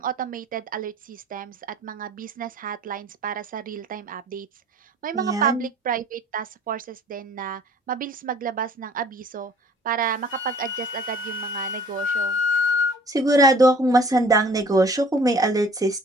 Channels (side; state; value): both; normal; correlation 0.51